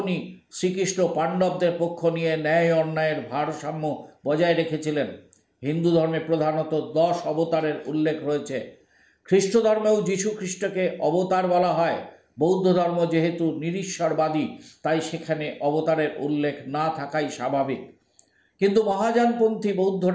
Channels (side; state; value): both; identical; correlation 1.00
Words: শ্রীকৃষ্ণ পাণ্ডবদের পক্ষ নিয়ে ন্যায় অন্যায়ের ভারসাম্য বজায় রেখেছিলেন। হিন্দু ধর্মে প্রধানত 10 অবতারের উল্লেখ রয়েছে। খ্রিস্ট ধর্মেও যীশু খ্রিস্টকে অবতার বলা হয়। বৌদ্ধ ধর্ম যেহেতু নিরীশ্বরবাদী, তাই সেখানে অবতারের উল্লেখ না থাকাই স্বাভাবিক। কিন্তু মহাযানপন্থী